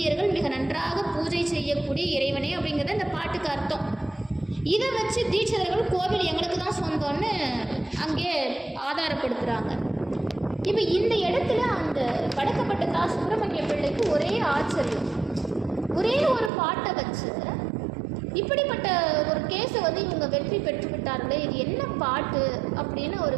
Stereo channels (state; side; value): drops out; left; at 16.5 s